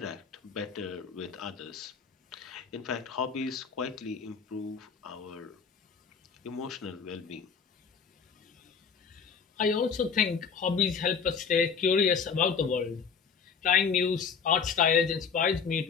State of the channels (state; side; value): quieter; right; 6.1 dB